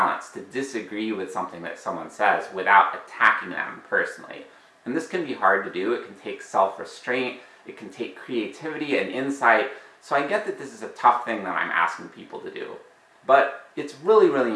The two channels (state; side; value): identical; both; correlation 1.00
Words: to disagree with something that someone says without attacking them personally. And this can be hard to do. It can take self-restraint, it can take creativity and insight. So I get that this is a tough thing that I'm asking people to do. But it's really,